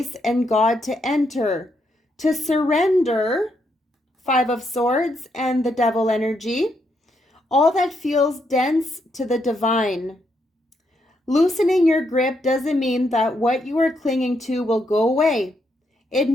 and God to enter. To surrender, Five of Swords and the Devil energy, all that feels dense to the divine. Loosening your grip doesn't mean that what you are clinging to will go away. It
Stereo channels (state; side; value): normal; both; correlation 0.78